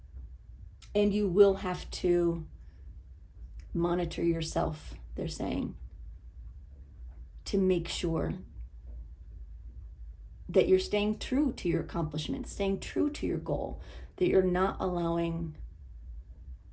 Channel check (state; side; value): identical; both; correlation 1.00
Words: And you will have to monitor yourself, they're saying, to make sure that you're staying true to your accomplishments, staying true to your goal, that you're not allowing